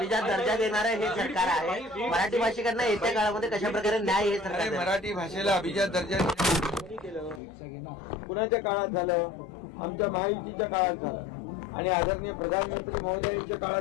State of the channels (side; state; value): right; drops out; at 7.4 s